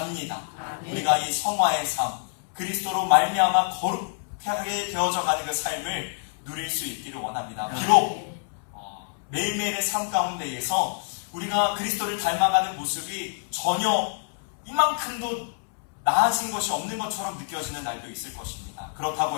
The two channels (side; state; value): right; silent; 60 dB below the other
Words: 우리가 이 성화의 삶, 그리스도로 말미암아 거룩하게 되어져 가는 그 삶을 누릴 수 있기를 원합니다. 비록 매일매일의 삶 가운데에서 우리가 그리스도를 닮아가는 모습이 전혀 이만큼도 나아진 것이 없는 것처럼 느껴지는 날도 있을 것입니다.